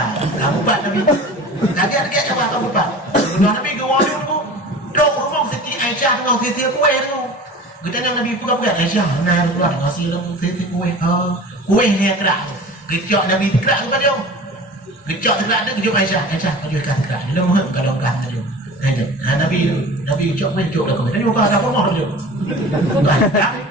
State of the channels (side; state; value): both; normal; correlation 0.38